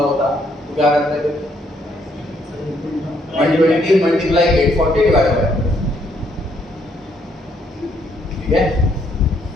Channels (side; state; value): both; normal; correlation 0.71